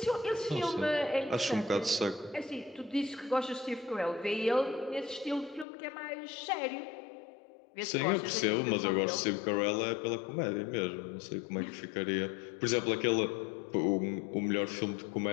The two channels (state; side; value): drops out; right; at 5.7 s